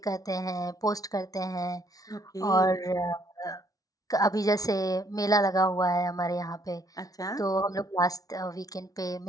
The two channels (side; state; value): right; late; 0.18 ms